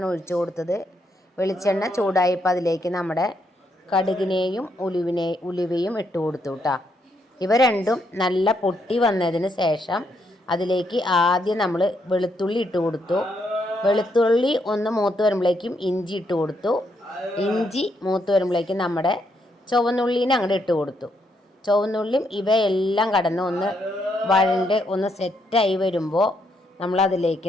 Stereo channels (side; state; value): both; normal; correlation 0.76